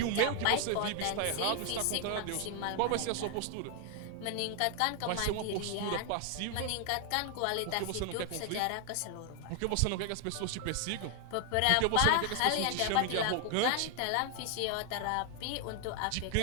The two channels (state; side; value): different; both; correlation 0.00